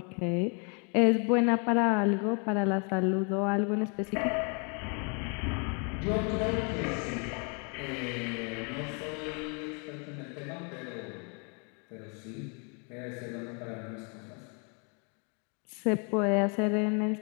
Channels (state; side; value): quieter; right; 36.6 dB